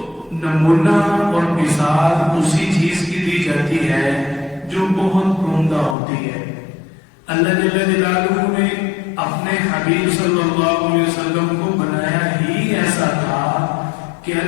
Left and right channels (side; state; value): right; drops out; at 6.0 s